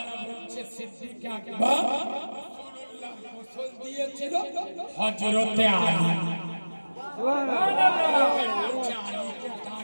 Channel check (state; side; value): inverted; both; correlation -1.00